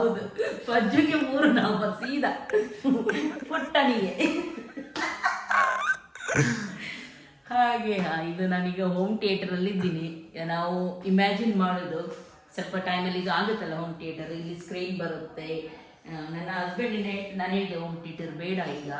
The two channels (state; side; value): identical; both; correlation 1.00